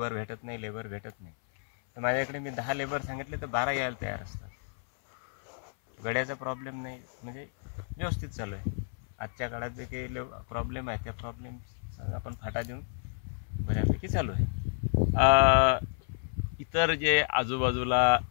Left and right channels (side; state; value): right; silent; 57 dB below the other